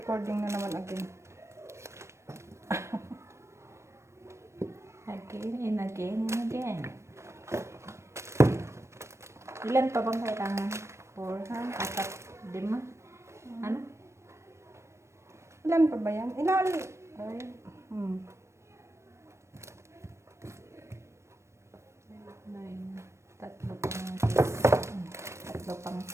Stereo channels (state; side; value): late; left; 0.13 ms